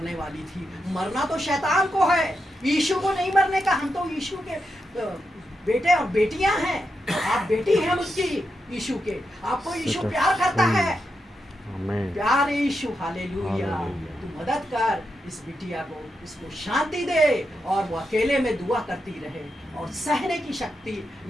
वाली थी। मरना तो शैतान को है, यीशु को नहीं मरने का। हम तो यीशु के बेटे और बेटियां हैं, आप बेटी हैं उसकी यीशु के, आपको यीशु प्यार करता है। प्यार यीशु, हालेलुया। तू मदद कर इस बिटिया को, इसको शांति दे और वो अकेले में दुआ करती रहे और सहने की शक्ति,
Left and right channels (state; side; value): normal; both; correlation 0.86